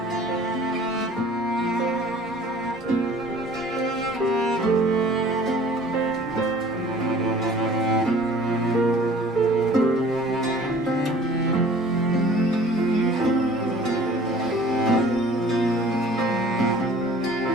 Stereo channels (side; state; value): both; normal; correlation 0.50